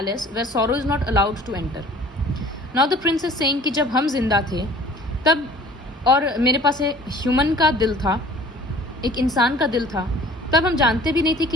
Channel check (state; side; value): normal; both; correlation 0.49